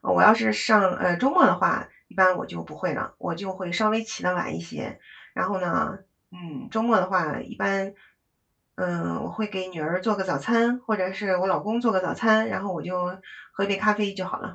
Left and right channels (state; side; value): identical; both; correlation 1.00